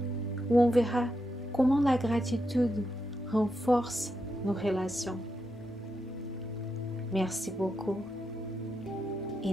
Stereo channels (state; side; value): normal; both; correlation 0.84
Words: où on verra comment la gratitude renforce nos relations. Merci beaucoup et